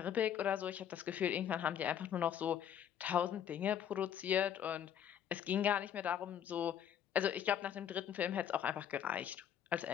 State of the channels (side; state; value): right; quieter; 9.5 dB